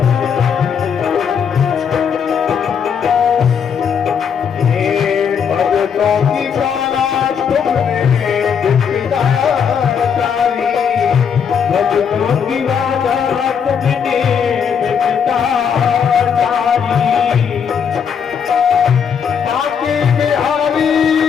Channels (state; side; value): quieter; right; 7.1 dB